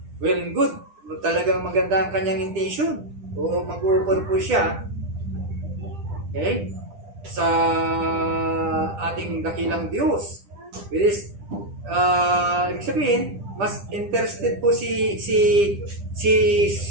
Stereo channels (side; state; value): left; late; 10 ms